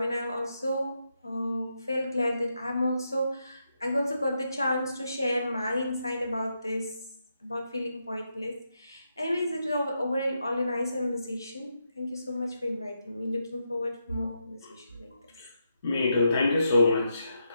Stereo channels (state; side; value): inverted; both; correlation -0.83